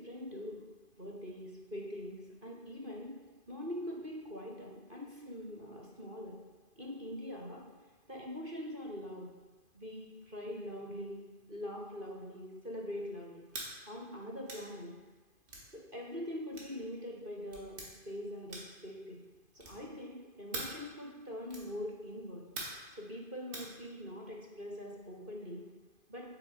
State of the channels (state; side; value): late; left; 2.5 ms